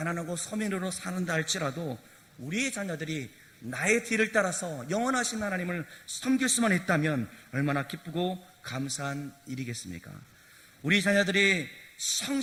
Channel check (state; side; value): identical; both; correlation 1.00